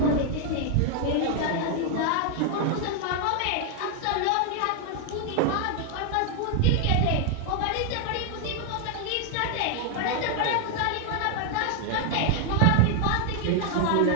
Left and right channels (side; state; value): both; different; correlation 0.00